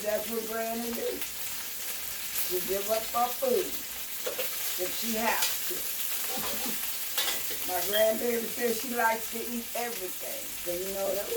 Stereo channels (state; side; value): identical; both; correlation 1.00